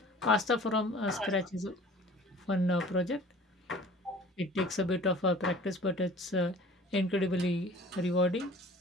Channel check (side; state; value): both; normal; correlation 0.46